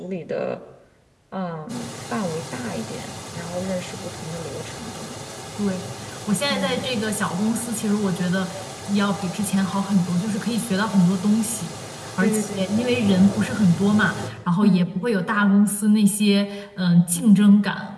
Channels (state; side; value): identical; both; correlation 1.00